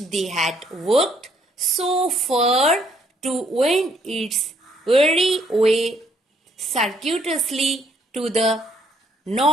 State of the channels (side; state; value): both; normal; correlation 0.68